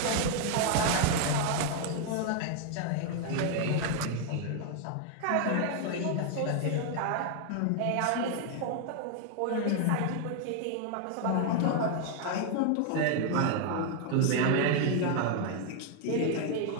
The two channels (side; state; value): both; different; correlation 0.00